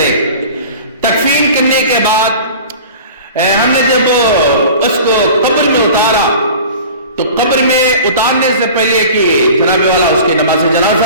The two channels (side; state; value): both; inverted; correlation -0.40